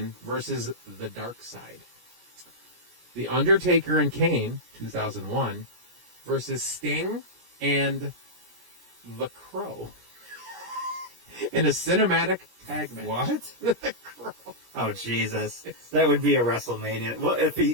versus The Dark Side. The Undertaker and Kane, 2001, versus Sting and The Crow in a cinematic tag match. What? The Crow. Oh, Jesus. That would be a WrestleMania. Well, if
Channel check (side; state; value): left; late; 17 ms